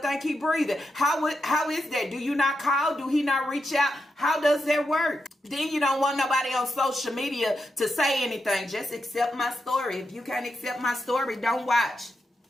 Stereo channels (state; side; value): normal; both; correlation 0.86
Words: he breathing. How is that? Do you not call? Do he not reach out? How does that work? Then you don't want nobody on social media to say anything. Just accept my story. If you can't accept my story, don't watch.